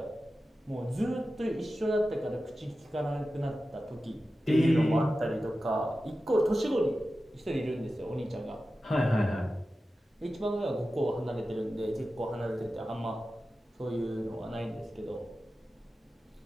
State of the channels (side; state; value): both; normal; correlation 0.93